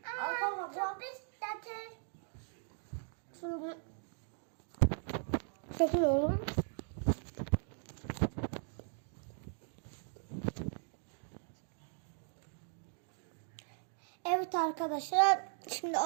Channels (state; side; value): silent; left; 52 dB below the other